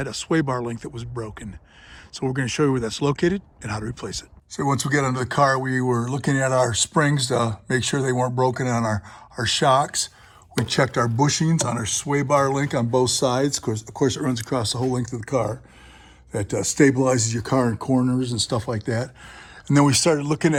a sway bar link that was broken. So we're going to show you where that's located and how to replace it. So once we get under the car, we were looking at our springs to make sure they weren't broken on our shocks. We checked our bushings on our sway bar link on both sides. Of course, it runs across the whole length of the car. That stabilizes your car in corners and stuff like that. And then we started looking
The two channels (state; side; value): identical; both; correlation 1.00